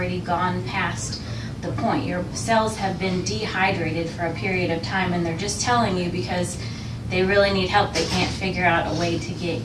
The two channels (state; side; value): identical; both; correlation 1.00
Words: gone past the point. Your cells have been dehydrated for a period of time, and they're just telling you because they really need help. They can't figure out a way to get